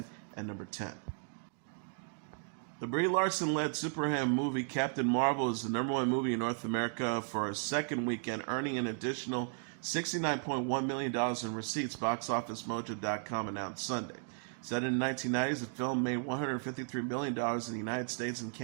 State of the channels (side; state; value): left; silent; 54 dB below the other